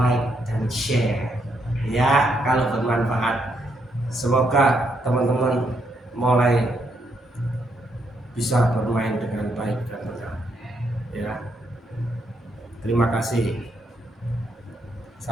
dan share ya kalau bermanfaat. Semoga teman-teman mulai bisa bermain dengan baik dan benar ya. Terima kasih,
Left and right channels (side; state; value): both; normal; correlation 0.76